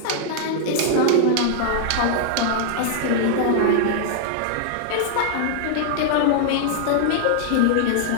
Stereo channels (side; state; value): both; different; correlation -0.01